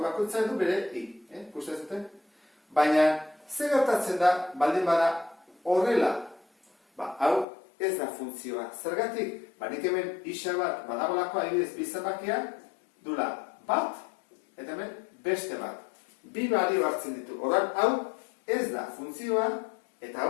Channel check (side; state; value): right; drops out; at 7.5 s